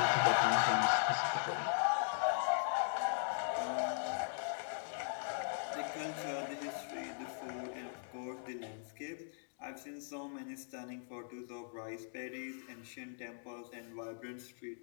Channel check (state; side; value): silent; right; digital silence